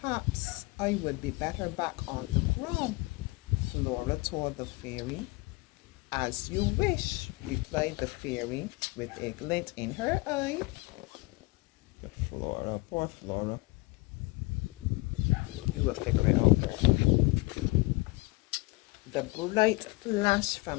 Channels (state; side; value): quieter; right; 24.0 dB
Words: I would be better back on the ground, Flora told the fairy. As you wish, replied the fairy with a glint in her eye. Flora, poor Flora. You will figure it out there. The bright flash